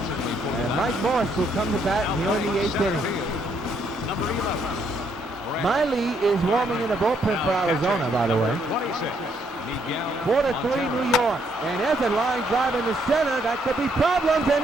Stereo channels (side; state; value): both; normal; correlation 0.72